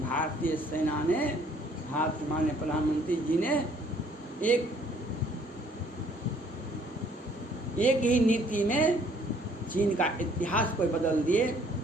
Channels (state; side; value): normal; both; correlation 0.61